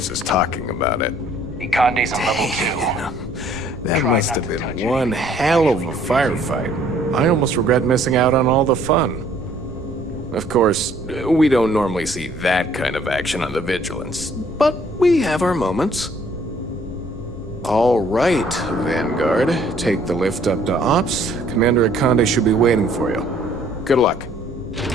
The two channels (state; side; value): normal; both; correlation 0.60